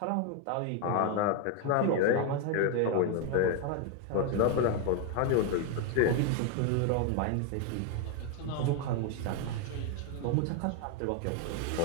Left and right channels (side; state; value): both; different; correlation 0.01